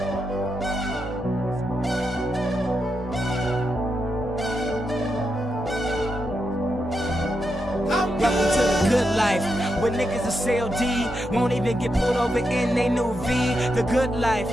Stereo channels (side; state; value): both; normal; correlation 0.84